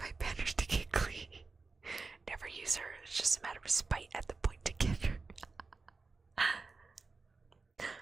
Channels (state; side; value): quieter; left; 4.1 dB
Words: banners to get clean. Never use her. It's just a matter of spite at the point to get her.